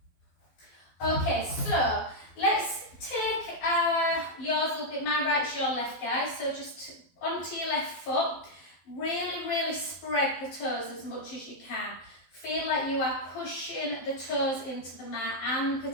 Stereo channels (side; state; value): right; late; 12 ms